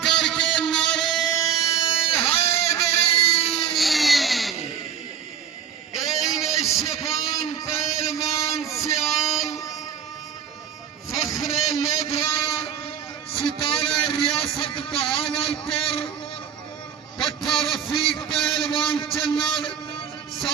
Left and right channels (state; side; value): quieter; left; 8.1 dB